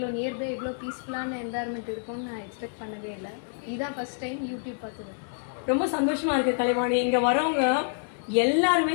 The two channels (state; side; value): silent; right; 58 dB below the other